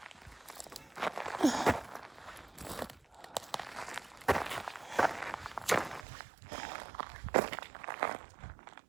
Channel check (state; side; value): drops out; left; at 6.1 s